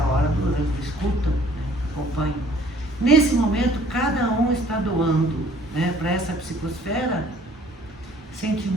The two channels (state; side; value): normal; both; correlation 0.57